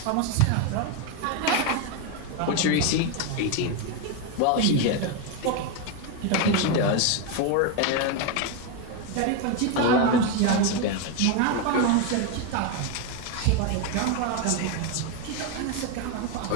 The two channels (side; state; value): both; different; correlation 0.02